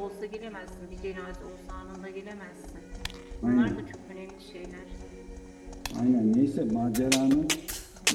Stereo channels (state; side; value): identical; both; correlation 1.00